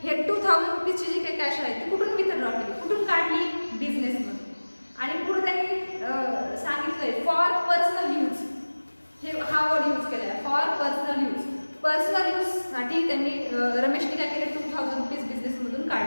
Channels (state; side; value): inverted; both; correlation -1.00